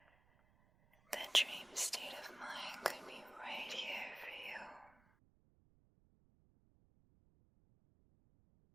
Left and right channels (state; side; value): noise; right; rumble, 29 dB below the sound